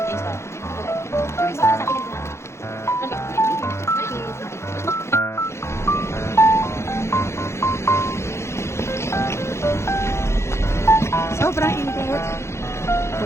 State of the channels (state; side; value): late; right; 0.13 ms